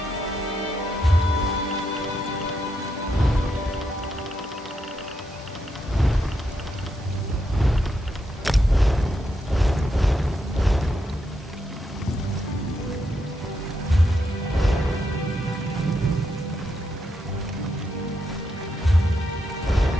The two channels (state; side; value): normal; both; correlation 0.81